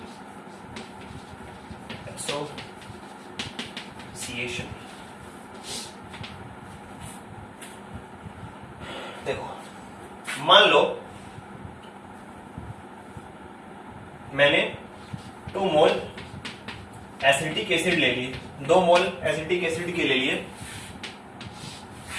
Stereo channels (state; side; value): identical; both; correlation 1.00